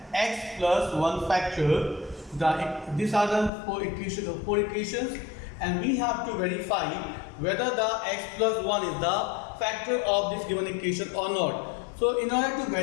x plus 1 factor. These are the four equations and we have to verify whether the x plus 1 is the factor of this given equation or not. So in order to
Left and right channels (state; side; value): drops out; right; at 3.5 s